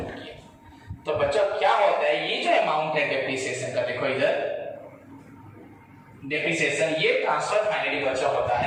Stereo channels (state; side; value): identical; both; correlation 1.00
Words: किया। तो बच्चों क्या होता है, ये जो अमाउंट है डेप्रिसिएशन का, देखो इधर डेप्रिसिएशन, ये ट्रांसफर फाइनली बच्चों होता